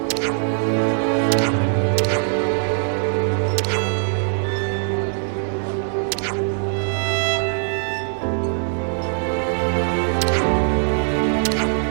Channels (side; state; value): left; silent; digital silence